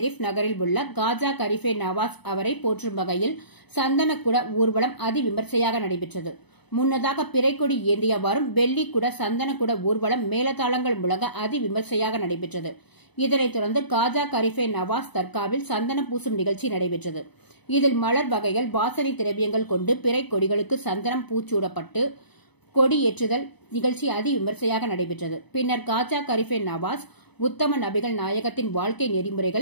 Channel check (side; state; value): right; late; 0.99 ms